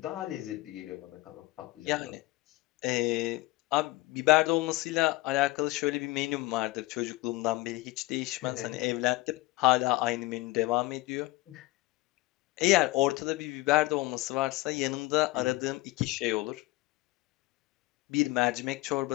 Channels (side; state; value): right; quieter; 20.4 dB